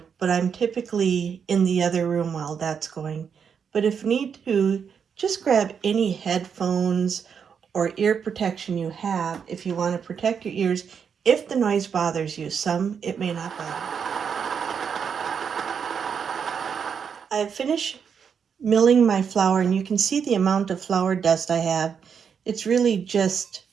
but I'm typically in the other room while that's going. But if need to, just grab any headphones or ear protection you have if you want to protect your ears if the noise bothers you. Some, it may not bother. I've finished milling my flour, and you can see the amount of flour dust I have. It's really just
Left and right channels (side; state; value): left; quieter; 6.9 dB